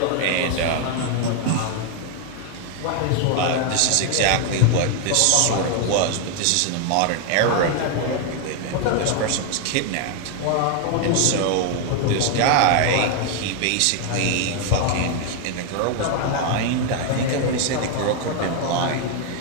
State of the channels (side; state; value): both; different; correlation 0.01